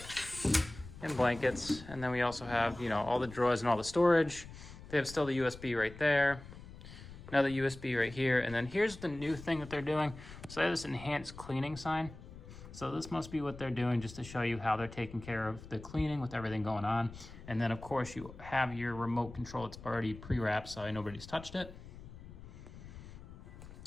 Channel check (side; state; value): left; noise; rumble, 15 dB below the sound